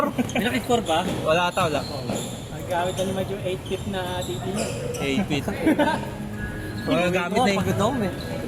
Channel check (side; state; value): both; identical; correlation 1.00